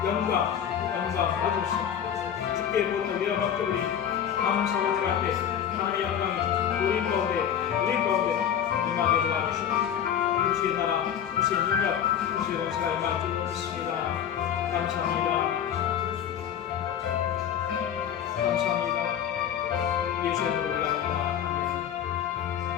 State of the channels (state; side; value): quieter; right; 9.3 dB